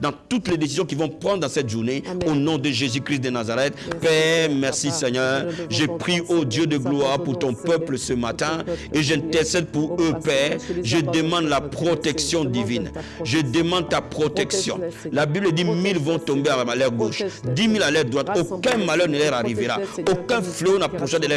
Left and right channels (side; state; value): both; identical; correlation 1.00